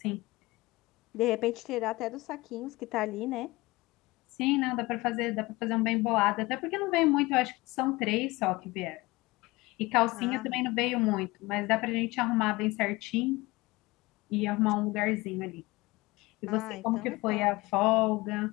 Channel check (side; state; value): right; quieter; 21.6 dB